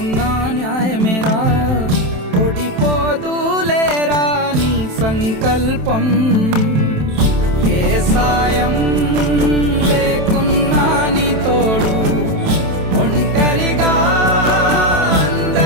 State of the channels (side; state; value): left; late; 27 ms